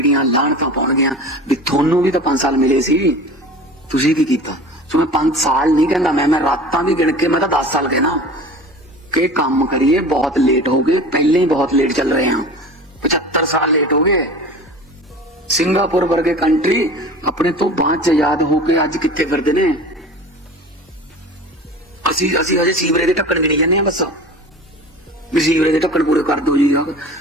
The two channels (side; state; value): both; normal; correlation 0.38